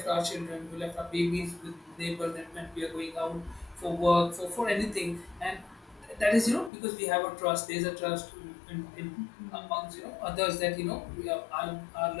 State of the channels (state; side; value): drops out; right; at 6.7 s